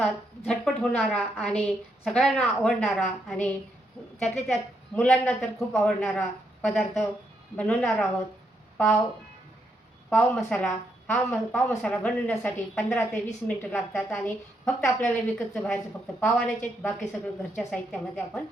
झटपट होणारा आणि सगळ्यांना आवडणारा आणि त्यातल्या त्यात मुलांना तर खूप आवडणारा पदार्थ बनवणार आहोत. पाव पाव मसाला. पाव मसाला बनवण्यासाठी 15 ते 20 मिनिटं लागतात आणि फक्त आपल्याला विकतचं बाहेरचं फक्त पाव आणायचे आहेत. बाकी सगळं घरच्या साहित्यामध्ये आपण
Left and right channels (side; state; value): both; normal; correlation 0.78